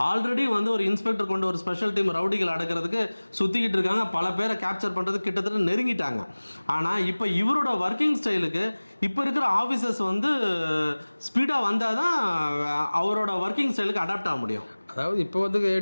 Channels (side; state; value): both; inverted; correlation -1.00